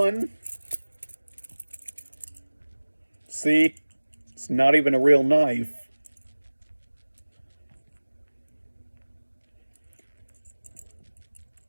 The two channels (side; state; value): both; inverted; correlation -1.00